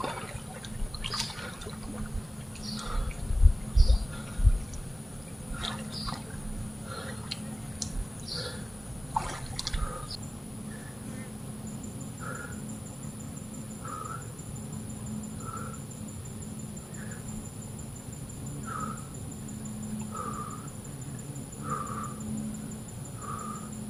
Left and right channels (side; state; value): both; normal; correlation 0.97